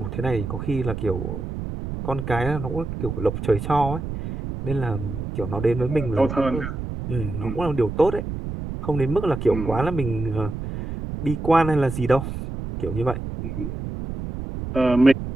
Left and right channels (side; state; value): right; noise; rumble, 6 dB below the sound